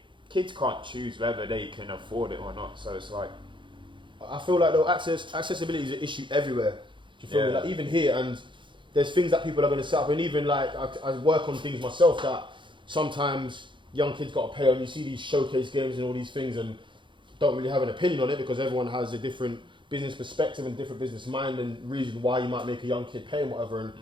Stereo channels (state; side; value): late; left; 0.23 ms